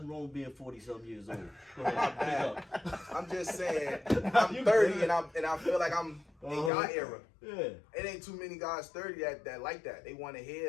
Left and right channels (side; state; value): right; drops out; at 6.7 s